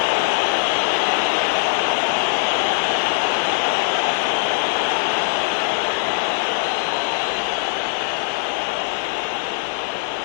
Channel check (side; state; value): right; silent; 62 dB below the other